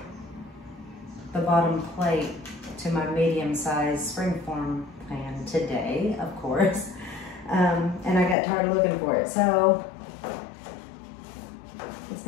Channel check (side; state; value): right; drops out; at 8.3 s